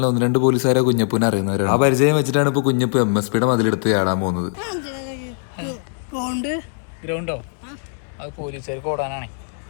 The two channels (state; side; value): silent; right; digital silence